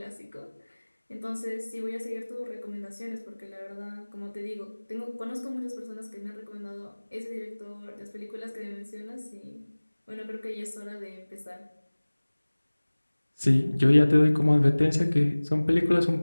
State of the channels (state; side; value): inverted; both; correlation -1.00